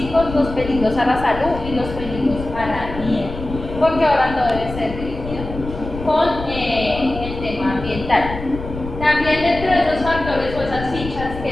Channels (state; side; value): noise; left; rumble, 9 dB below the sound